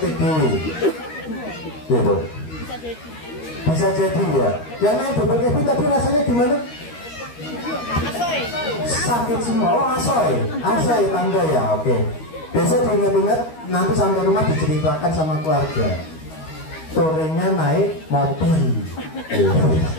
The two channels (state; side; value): late; right; 13 ms